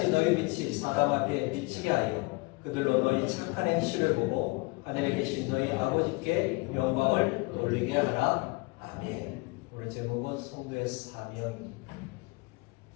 너희 빛이 사람 앞에 비치게 하여 그들로 너희 착한 행실을 보고 하늘에 계신 너희 아버지께 영광을 돌리게 하라. 아멘. 오늘 제목은 성도의 사명입니다.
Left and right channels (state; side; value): quieter; right; 26.9 dB